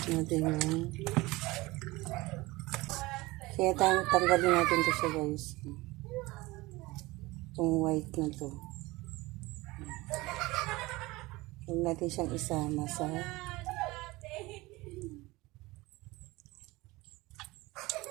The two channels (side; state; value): left; quieter; 21.2 dB